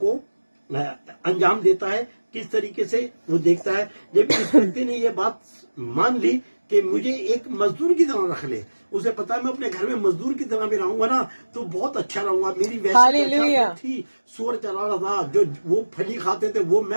अंजाम देता है, किस तरीके से वो देखता है। जब इस व्यक्ति ने ये बात मान ली कि मुझे एक मजदूर की तरह रख ले, उसे पता है मैं अपने घर में मजदूर की तरह भी रहूंगा ना तो बहुत अच्छा रहूंगा। मेरी वैसी दशा थी, सुअर चला रहा था, जो वो फली खाते थे वो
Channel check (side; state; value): both; inverted; correlation -1.00